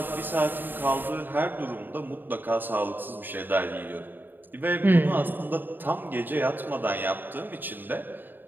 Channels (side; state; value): left; late; 0.092 ms